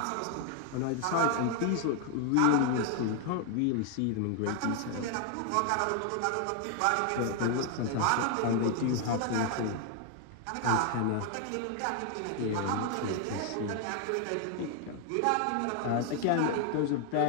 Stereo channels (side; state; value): both; different; correlation 0.01